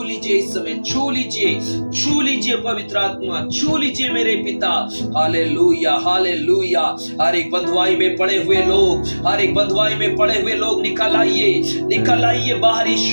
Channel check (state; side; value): inverted; both; correlation -1.00